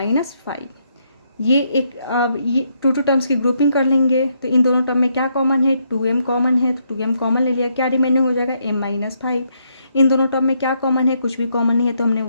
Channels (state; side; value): inverted; both; correlation -0.76